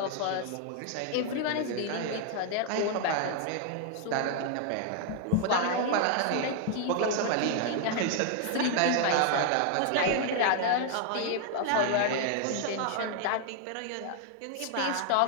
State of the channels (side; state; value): both; different; correlation 0.00